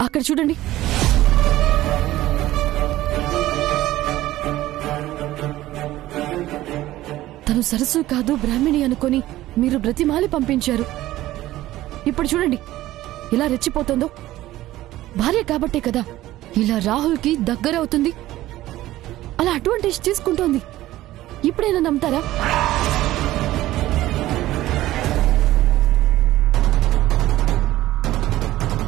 అక్కడ చూడండి. తను సరస్సు కాదు బ్రాహ్మిణి అనుకొని మీరు బ్రతిమాలి పంపించారు. ఇప్పుడు చూడండి ఇలా రెచ్చిపోతుందో. భార్య కాబట్టే కదా ఇలా రాహుల్కి దగ్గరవుతుంది, అలా అడ్వాంటేజ్ తీసుకుంటోంది. ఇప్పుడైనా నమ్ముతారా?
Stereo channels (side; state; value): left; quieter; 15.5 dB